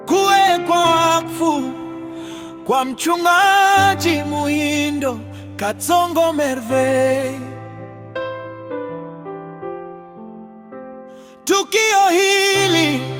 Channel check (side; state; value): both; identical; correlation 1.00